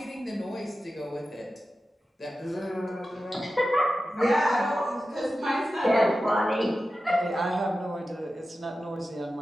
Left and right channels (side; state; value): both; normal; correlation 0.93